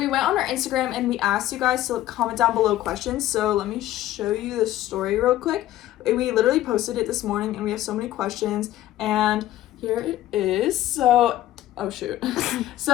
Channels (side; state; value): right; quieter; 14.1 dB